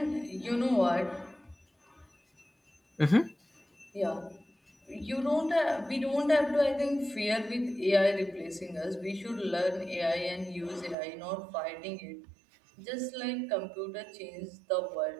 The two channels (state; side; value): drops out; left; at 11.0 s